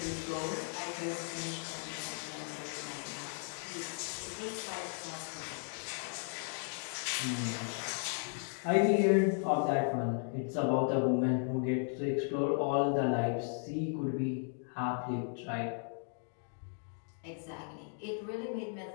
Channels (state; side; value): silent; right; 54 dB below the other